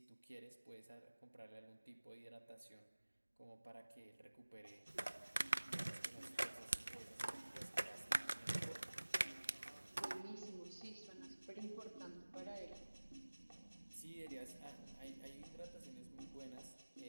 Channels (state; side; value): inverted; both; correlation -1.00